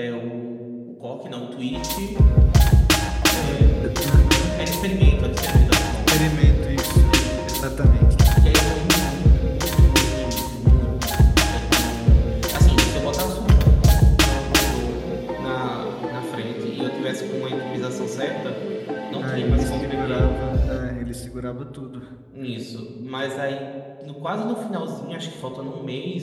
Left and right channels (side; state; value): both; identical; correlation 1.00